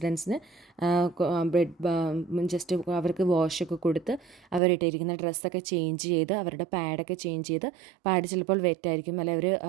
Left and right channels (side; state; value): left; drops out; at 4.6 s